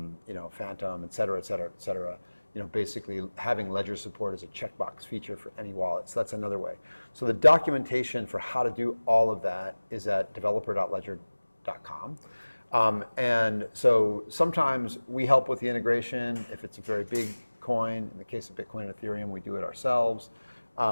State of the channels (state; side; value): inverted; both; correlation -1.00